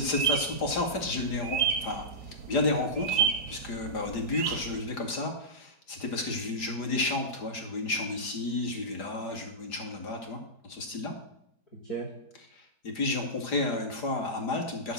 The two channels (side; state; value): right; late; 4.9 ms